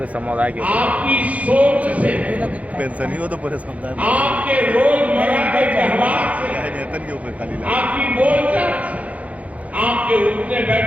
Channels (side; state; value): left; late; 0.068 ms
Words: समुदाय के आपकी सोच से, पेंशन ही हो तो पूरे समुदाय में आपके रोजमर्रा के व्यवहार से, नेतन के ऊपर खाली आपकी बोलचाल से, आपके उठने